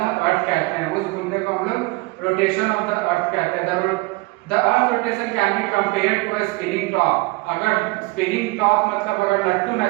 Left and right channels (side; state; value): left; quieter; 23.8 dB